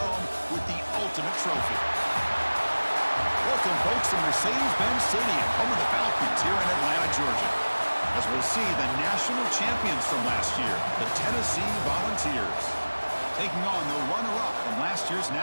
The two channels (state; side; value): inverted; both; correlation -1.00